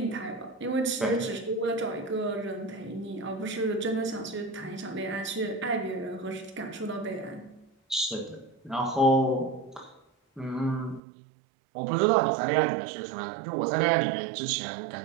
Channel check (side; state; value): left; drops out; at 11.0 s